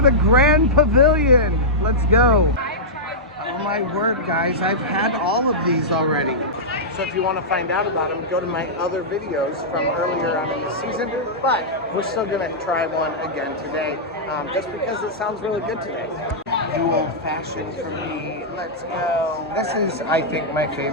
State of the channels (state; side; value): normal; both; correlation -0.12